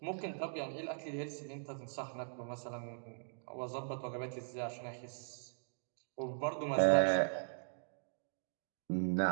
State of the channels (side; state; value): left; silent; digital silence